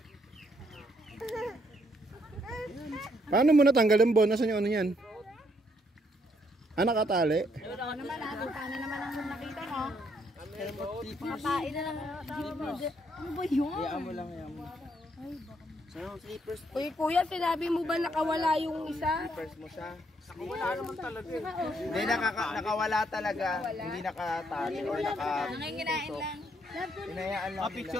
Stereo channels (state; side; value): normal; both; correlation 0.72